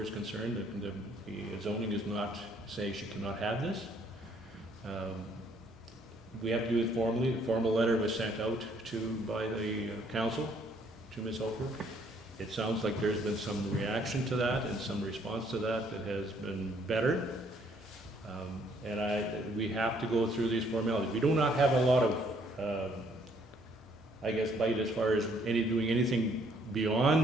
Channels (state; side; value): normal; both; correlation 0.65